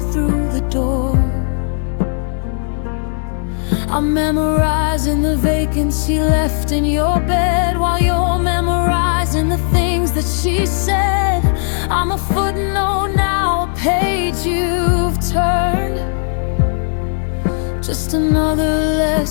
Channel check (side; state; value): right; silent; digital silence